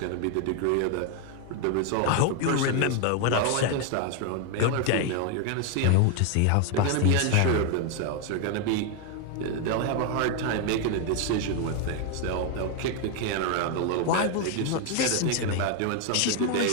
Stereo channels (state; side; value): different; both; correlation 0.01